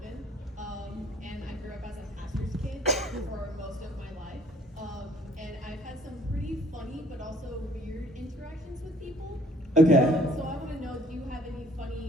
and I grew up as a pastor's kid for most of my life. And I've had some pretty funny but also weird interactions with people. Okay. So I want to know, do you have any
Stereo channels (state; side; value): normal; both; correlation 0.58